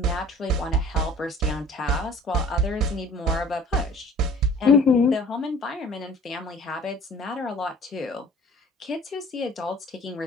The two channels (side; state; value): both; normal; correlation 0.48